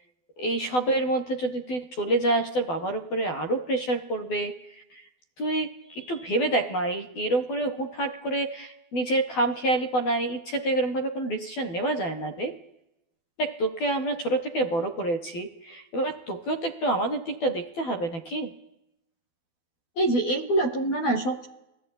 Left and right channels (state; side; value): late; right; 12 ms